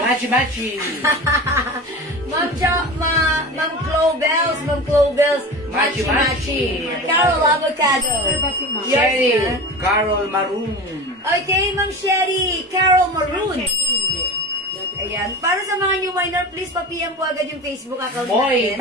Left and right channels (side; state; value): both; normal; correlation 0.31